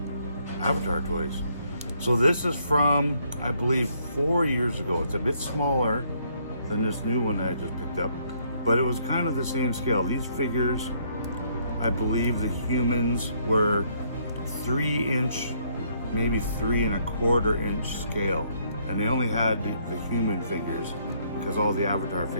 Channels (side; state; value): both; inverted; correlation -0.69